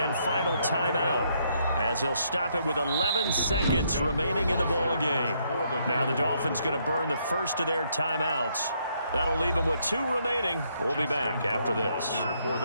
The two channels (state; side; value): inverted; both; correlation -0.73